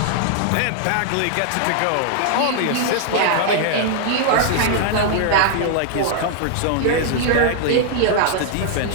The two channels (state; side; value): different; both; correlation 0.00